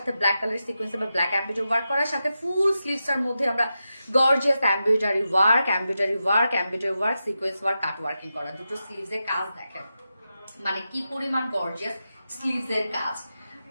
ব্ল্যাক কালার সিকোয়েন্স বা ব্ল্যাক এমব্রয়ডারি ওয়ার্ক করার সাথে ফুল স্লিভসটার মধ্যে আমরা gorgeous embroidery work, sequence work, cut working করা, দুটো স্লিভসের কাজ দেখেন মানে কি পরিমাণ গর্জিয়াস স্লিভসের কাজ।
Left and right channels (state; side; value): inverted; both; correlation -0.90